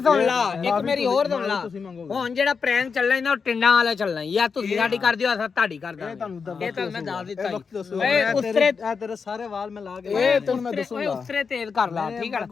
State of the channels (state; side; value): quieter; right; 5.5 dB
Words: ਸੁਣ ਲਾ ਹੁਣ ਜਿਹੜਾ ਪ੍ਰੈਂਕ ਚੱਲਣਾ ਇਹਨਾਂ ਟਿੰਡਾਂ ਵਾਲਾ ਚੱਲਣਾ ਯਾ ਤੁਸੀਂ ਸਾਡੀ ਕਰਦੇ ਹੋ ਅਸਾਂ ਤੁਹਾਡੀ ਕਰਦਾ ਇਹ ਤੁਹਾਨੂੰ ਮੈਂ ਦੱਸ ਦਿੱਤਾ ਓਏ ਉਸਰੇ ਤੇਰੇ ਸਾਰੇ ਵਾਲ ਮੈਂ ਲਾ ਕੇ ਓਏ ਤੁਹਾਨੂੰ ਮੈਂ ਦੱਸੂਗਾ ਓਏ ਉਸਰੇ ਤੇਜ਼ ਕਰ ਲਾ ਠੀਕ ਹੈ